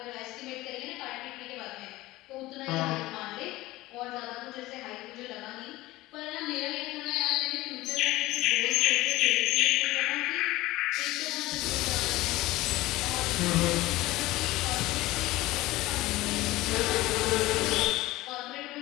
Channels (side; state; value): right; quieter; 18.3 dB